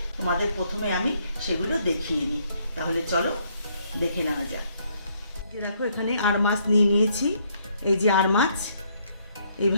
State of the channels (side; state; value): both; inverted; correlation -0.70